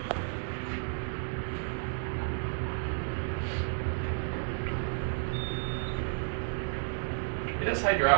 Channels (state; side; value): silent; left; 56 dB below the other